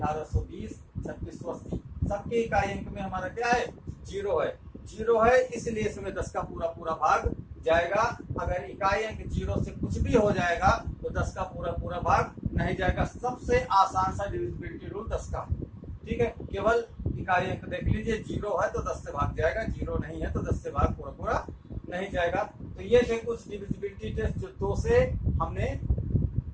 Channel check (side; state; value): both; identical; correlation 1.00